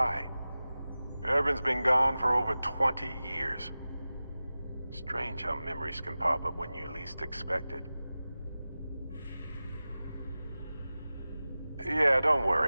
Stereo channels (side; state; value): both; inverted; correlation -0.96